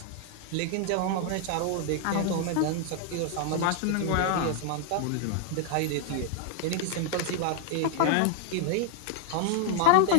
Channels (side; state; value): both; different; correlation 0.00